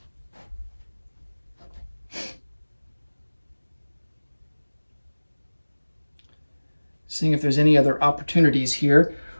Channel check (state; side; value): inverted; both; correlation -1.00